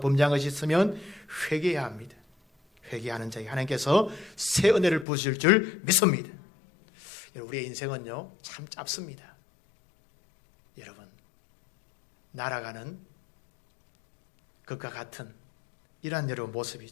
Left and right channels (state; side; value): drops out; right; at 5.1 s